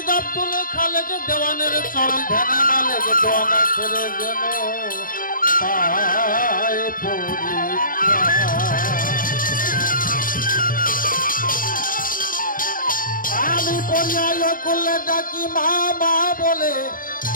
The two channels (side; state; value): right; late; 0.40 ms